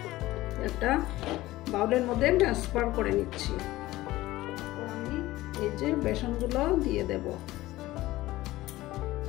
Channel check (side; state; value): right; quieter; 17.2 dB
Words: একটা বাউলের মধ্যে ট্রান্সফার করে নিচ্ছি। আমি এই যে বেসনগুলো দিয়ে দেব।